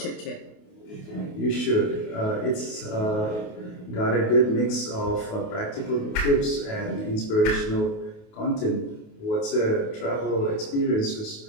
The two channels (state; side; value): late; right; 28 ms